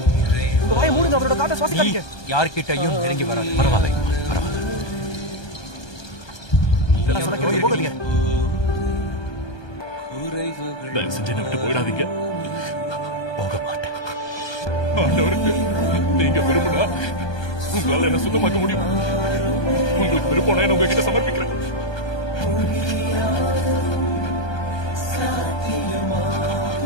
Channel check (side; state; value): right; late; 1.2 ms